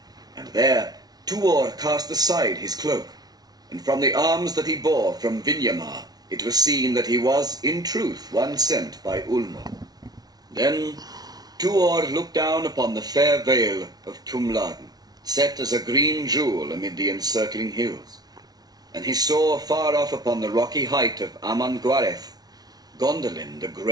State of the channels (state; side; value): late; left; 0.19 ms